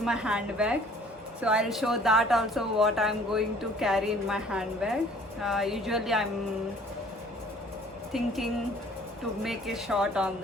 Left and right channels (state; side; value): normal; both; correlation 0.54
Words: handbag. So I'll show that also what I'm going to carry in my handbag. Usually I'm thinking to make a shot on